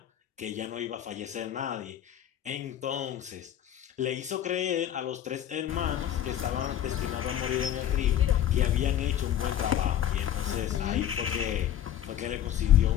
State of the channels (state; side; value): quieter; right; 10.7 dB